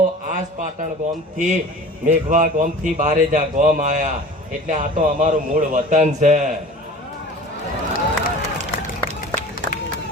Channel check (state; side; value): normal; both; correlation 0.41